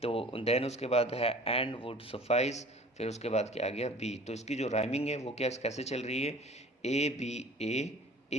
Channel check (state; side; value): normal; both; correlation 0.47